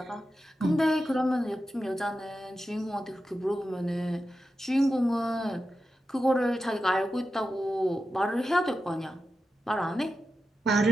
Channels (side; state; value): both; normal; correlation 0.91